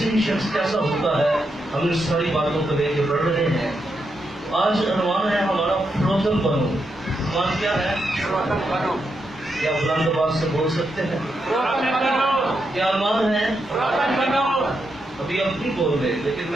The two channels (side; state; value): both; normal; correlation 0.83